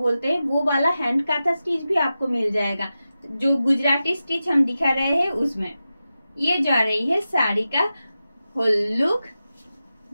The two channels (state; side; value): inverted; both; correlation -0.93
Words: हैं वो वाला हैंड काथा स्टिच भी आपको मिल जाएगा। जो गुजराती स्टिच हम दिखा रहे हैं उसमें ये जा रही है साड़ी का whole look.